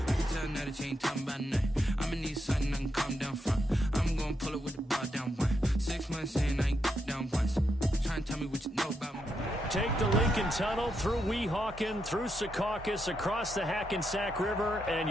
tell now that you ain't talking about nothing. I'ma need something I can calm down from. I'm gonna pull it with the bar down one. 6 months in, I ain't down once. Try and tell me what you know about me. Take the Lincoln Tunnel through Weehawken, through Secaucus, across the Hackensack River, and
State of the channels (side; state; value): both; normal; correlation 0.82